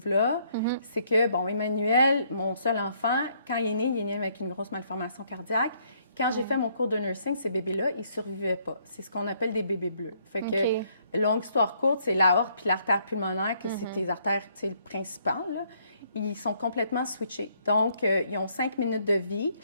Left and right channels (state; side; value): inverted; both; correlation -0.68